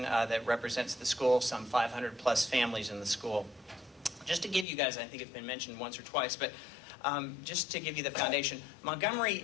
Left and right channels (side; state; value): right; drops out; at 4.7 s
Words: that represents the school, some 500 plus families in the school. Just to give you guys, I think it's been mentioned once or twice, but just to give you the foundation,